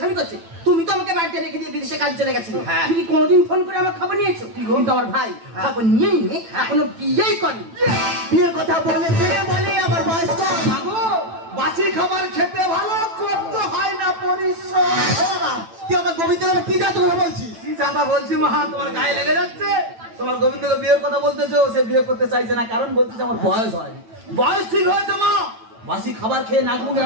করছে। তুমি তো আমাকে বাড়িতে রেখে দিয়ে বিদেশে কাজ চলে গেছিলে। তুমি কি কোনোদিন ফোন করে আমার খবর নিয়েছো? কিন্তু আমার ভাই খবর নিয়ে নিয়ে এখনো বিয়েই করেনি। বিয়ের কথা বলে বলে আবার বয়স কম। বাসি খাবার খেতে ভালো, করতে হয় না পরিশ্রম। তুই আমার গোবিন্দের কি জাত কথা বলছিস? কি জাতা বলছি মা, তোমার গায়ে লেগে যাচ্ছে। তোমার গোবিন্দকে বিয়ের কথা বলতেছো, সে বিয়ে করতে চাইছে না, কারণ বলতেছে আমার বয়স হয়নি। বয়স ঠিক হয়েছে মা, বাসি খাবার খেয়ে নাক মুখ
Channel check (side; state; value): left; late; 9.0 ms